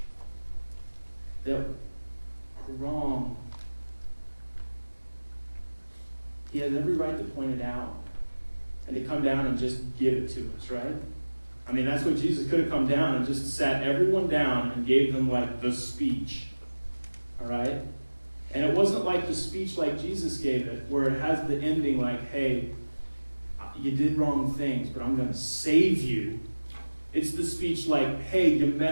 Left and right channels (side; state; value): both; inverted; correlation -1.00